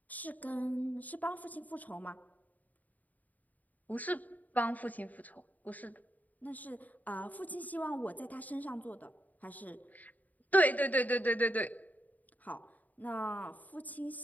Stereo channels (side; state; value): right; late; 0.078 ms